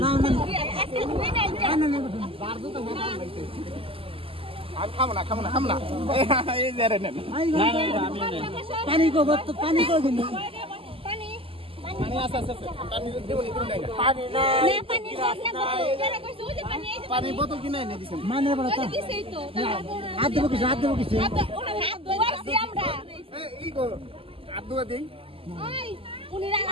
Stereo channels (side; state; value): left; late; 0.26 ms